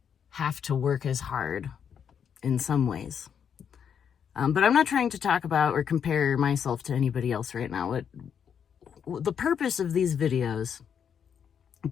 have to work as hard in some ways. But I'm not trying to talk about or compare myself to anybody else right now. The purpose of these videos,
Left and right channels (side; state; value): right; quieter; 7.8 dB